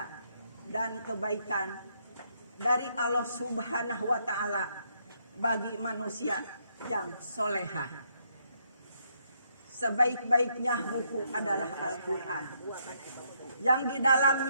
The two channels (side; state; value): both; inverted; correlation -0.74